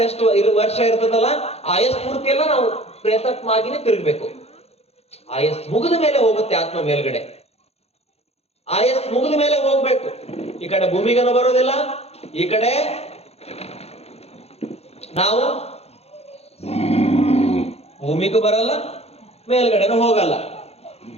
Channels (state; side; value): late; right; 0.30 ms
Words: ಎಷ್ಟು ವರ್ಷ ಇರ್ತದಲ್ಲ, ಆಯಸ್ ಪೂರ್ತಿ ಎಲ್ಲ ನಾವು ಪ್ರೇತಾತ್ಮ ಆಗಿನೇ ತಿರುಗ್ಬೇಕು. ಆಯಸ್ ಮುಗಿದ ಮೇಲೆ ಹೋಗುತ್ತೆ ಆತ್ಮ ಮೇಲ್ಗಡೆ. ಆಯಸ್ ಮುಗಿದ ಮೇಲೆ ಹೋಗ್ಬೇಕು. ಈ ಕಡೆ ಭೂಮಿಗನ ಬರೋದಿಲ್ಲ, ಈ ಕಡೆ ನಾವು ಭೂಮಿಗೂ ಬರಲ್ಲ, ಮೇಲ್ಗಡೆನೂ ಹೋಗಲ್ಲ.